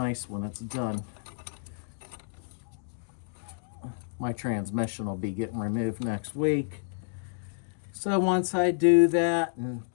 when it's done. My transmission will be getting removed next week. So once I do that and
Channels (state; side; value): silent; right; digital silence